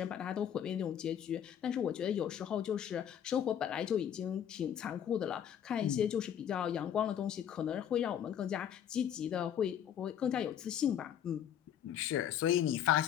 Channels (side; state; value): right; quieter; 9.4 dB